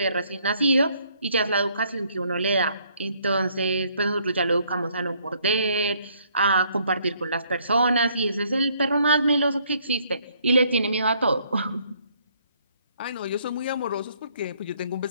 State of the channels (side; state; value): both; inverted; correlation -0.66